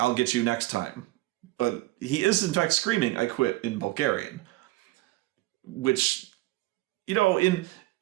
get you next time." But he is in fact screaming "I quit" in Bulgarian. Which,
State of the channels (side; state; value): left; quieter; 18.7 dB